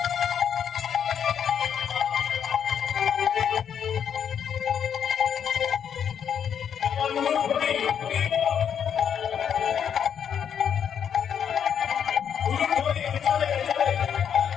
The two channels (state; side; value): quieter; right; 8.2 dB